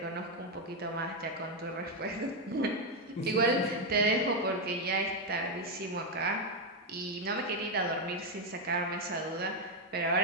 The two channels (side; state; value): both; normal; correlation 0.04